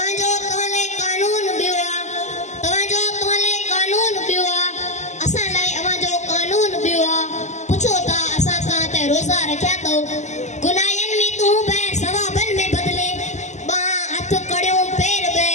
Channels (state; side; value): late; right; 0.34 ms